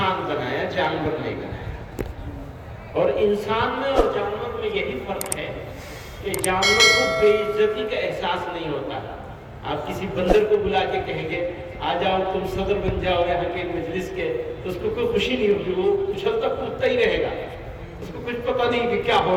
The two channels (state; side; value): identical; both; correlation 1.00